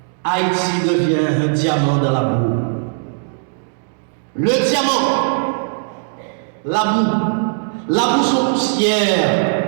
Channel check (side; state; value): left; silent; digital silence